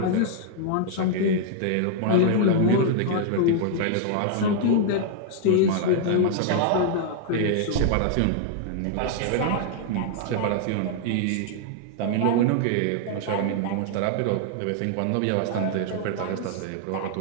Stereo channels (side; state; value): both; different; correlation -0.01